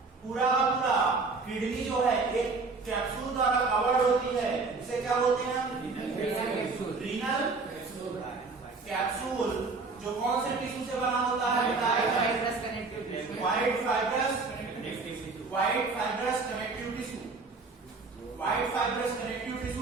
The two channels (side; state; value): left; quieter; 4.1 dB